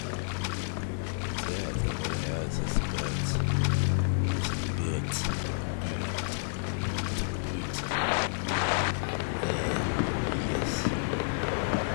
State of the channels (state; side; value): silent; right; 58 dB below the other